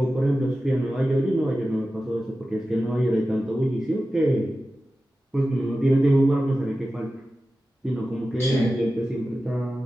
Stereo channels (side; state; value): both; normal; correlation 0.94